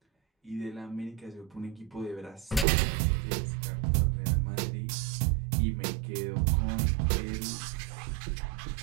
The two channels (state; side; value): drops out; left; at 2.7 s